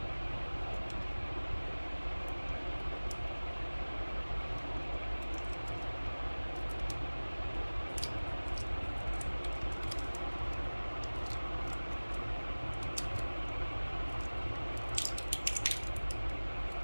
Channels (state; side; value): inverted; both; correlation -1.00